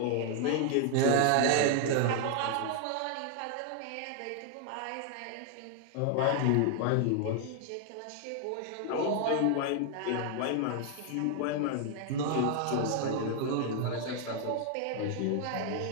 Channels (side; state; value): both; different; correlation 0.00